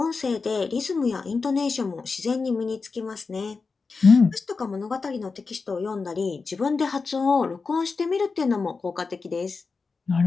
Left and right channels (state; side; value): quieter; right; 4.5 dB